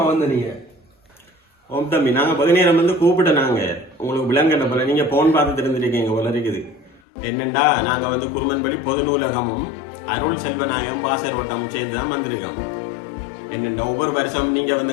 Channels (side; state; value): right; drops out; at 7.0 s